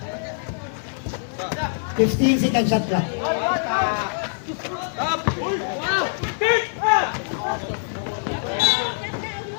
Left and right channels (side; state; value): right; silent; digital silence